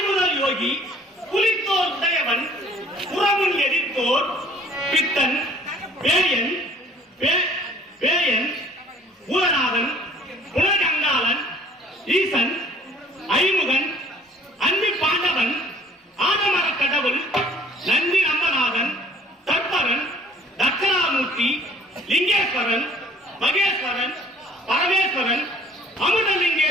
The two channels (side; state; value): both; normal; correlation 0.54